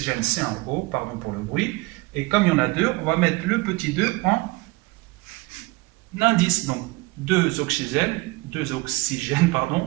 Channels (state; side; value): quieter; left; 23.3 dB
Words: c'est un O, pardon pour le bruit. Et comme il y en a deux, on va mettre le petit 2 en indice. Donc, deux oxygènes,